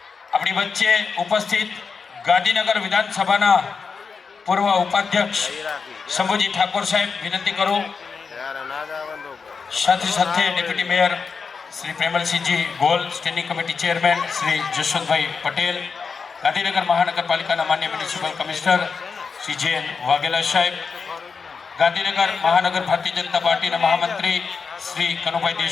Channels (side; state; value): right; quieter; 5.3 dB